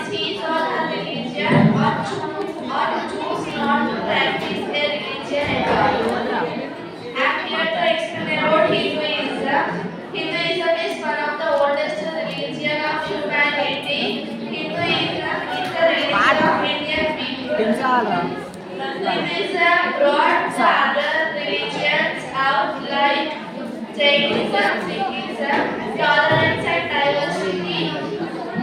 his or her religion or to choose not to practice a religion at all. I'm here to explain about Hinduism. Hinduism is one of the oldest religion of humanity. Hinduism is the religion of Indian people. Hinduism brought the other religions out like Jainism, Sikhism, tolerance and diversity.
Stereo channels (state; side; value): identical; both; correlation 1.00